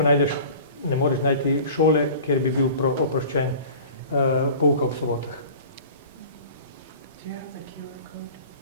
najdeš, ne moreš najti šole, kjer bi bil oproščen pouka ob sobotah. Do you have the QR code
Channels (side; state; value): both; inverted; correlation -0.42